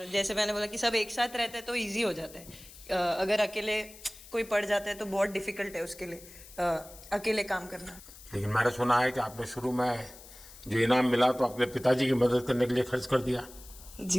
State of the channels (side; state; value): left; noise; hiss, 19 dB below the sound